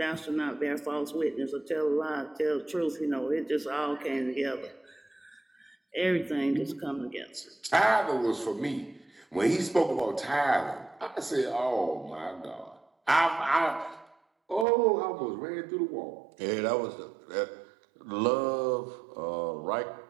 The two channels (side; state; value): left; drops out; at 14.7 s